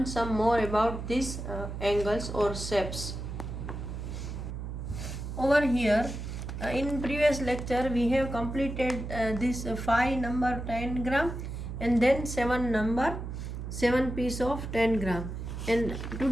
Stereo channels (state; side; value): noise; right; hum, 6 dB below the sound